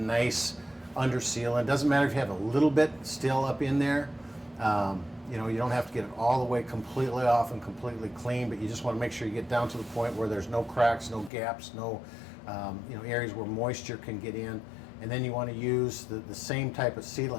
under sealant. It doesn't matter if you have a little bit still up in there. You don't have to get it all the way completely off and completely clean, but you just want to make sure you get down to the point where there's no cracks, no gaps, no areas where moisture can get in. And then you want to use the same type of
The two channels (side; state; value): right; drops out; at 11.3 s